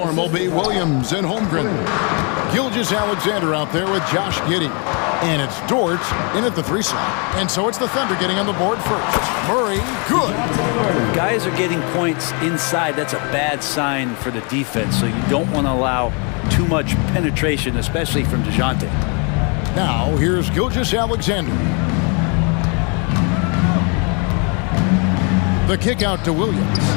will be Williams and Holmgren. Gilgeous-Alexander out there with Josh Giddey. And it's Dort in at the 3 slot. And so it's the Thunder getting on the board first. Murray, good. Guys are getting points inside. That's a bad sign for the defense. So you don't want to allow too much penetration, especially from DeJounte. Now here's Gilgeous-Alexander. The kick out to Williams.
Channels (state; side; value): quieter; right; 35.0 dB